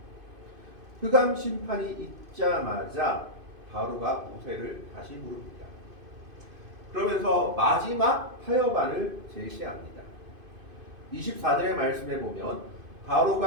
흑암 심판이 있자마자 바로가 모세를 다시 부릅니다. 그러면서 마지막 타협안을 제시합니다. 24절의 말씀에 보면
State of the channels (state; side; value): late; left; 2.5 ms